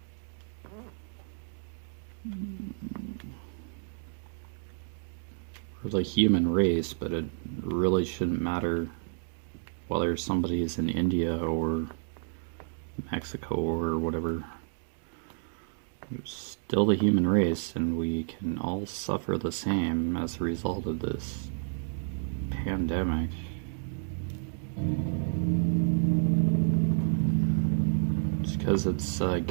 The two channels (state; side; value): silent; left; 58 dB below the other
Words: We're the human race, but it really shouldn't matter whether somebody is in India or Mexico or whatever. We're still the human race, and we can all suffer the same as a result of this pandemic. Just because it's